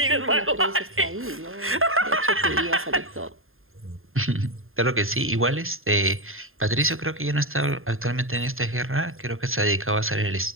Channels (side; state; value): left; late; 0.61 ms